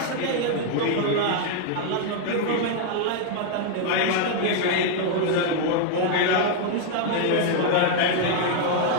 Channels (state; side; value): different; both; correlation 0.00